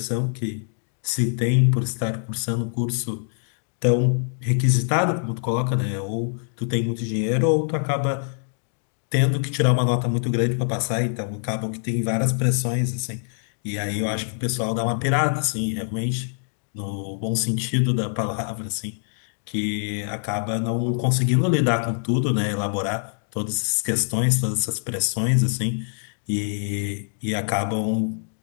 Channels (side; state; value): right; silent; digital silence